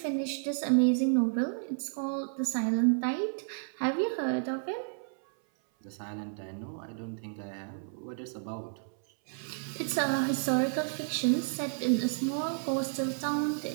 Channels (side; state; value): left; silent; 57 dB below the other